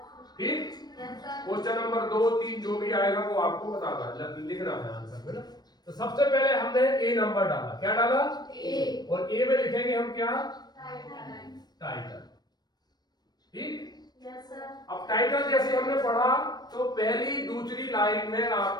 ठीक। क्वेश्चन नंबर 2, 3 जो भी आएगा वो आपको बताना है, लिखना है आंसर में ना। तो सबसे पहले हमने ए नंबर डाला। क्या डाला? ए। और ए में लिखेंगे हम क्या? टाइटल। ठीक। अब टाइटल जैसे हमने पढ़ा तो पहली दूसरी लाइन में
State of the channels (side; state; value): right; late; 0.19 ms